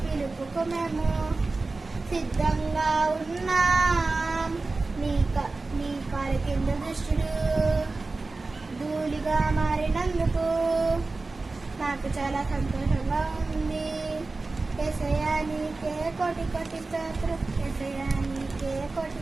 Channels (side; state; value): left; quieter; 3.5 dB